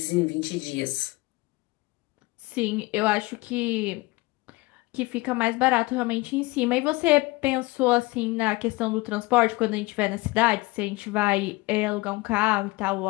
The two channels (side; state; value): right; quieter; 22.5 dB